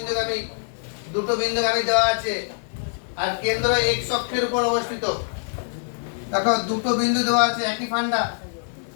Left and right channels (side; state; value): right; silent; digital silence